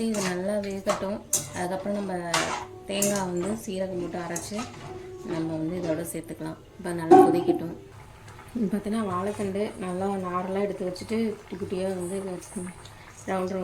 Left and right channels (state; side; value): identical; both; correlation 1.00